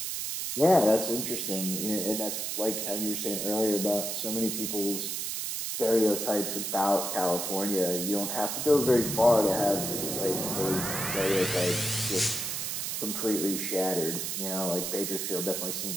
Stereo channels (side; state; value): right; noise; hiss, 3 dB below the sound